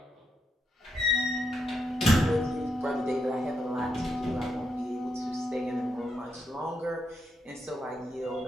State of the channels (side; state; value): both; normal; correlation 0.81